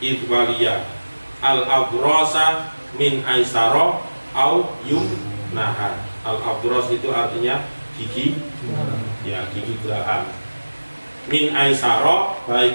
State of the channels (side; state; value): both; inverted; correlation -1.00